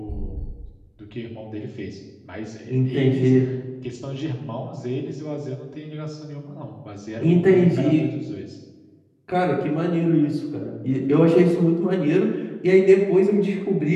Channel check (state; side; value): identical; both; correlation 1.00